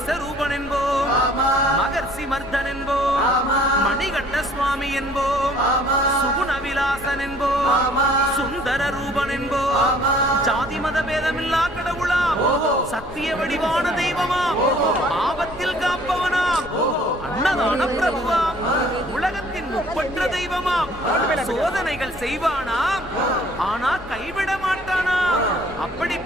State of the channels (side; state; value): left; noise; rumble, 17 dB below the sound